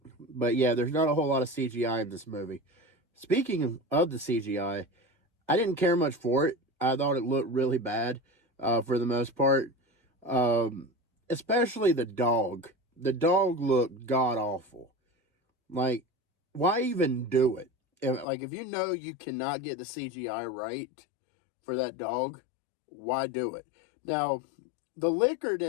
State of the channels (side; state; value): right; drops out; at 18.2 s